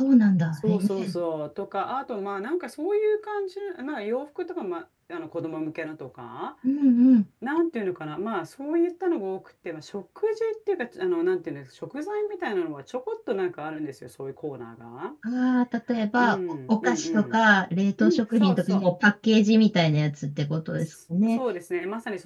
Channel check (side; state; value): both; identical; correlation 1.00